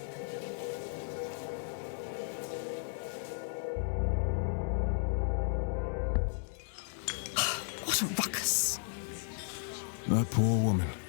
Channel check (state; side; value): silent; right; digital silence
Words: What a ruckus. That poor woman.